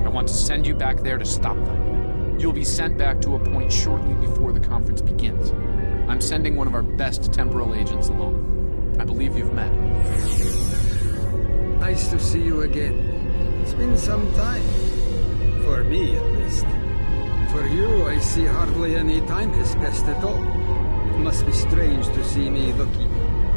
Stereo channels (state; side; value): inverted; both; correlation -1.00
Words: I want to send you back there to stop them. You'll be sent back to a point shortly before the conference begins. I'm sending one of our best temporal agents along. I believe you've met. Nice to see you again. It's been some time. For me, at least. For you, I see hardly any time has passed at all. It must be strange to see me looking